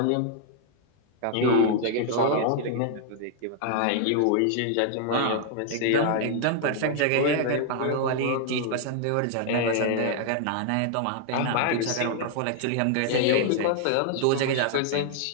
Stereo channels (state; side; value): different; both; correlation 0.00